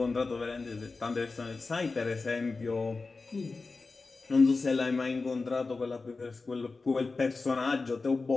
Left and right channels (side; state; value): right; quieter; 3.9 dB